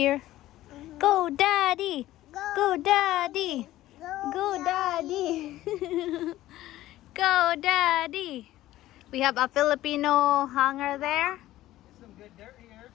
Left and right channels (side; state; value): right; quieter; 15.1 dB